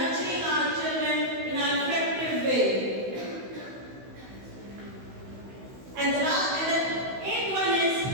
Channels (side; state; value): left; late; 16 ms